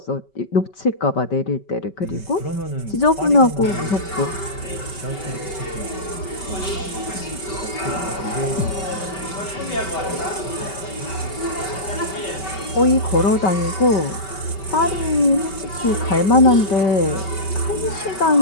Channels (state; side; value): late; right; 5.2 ms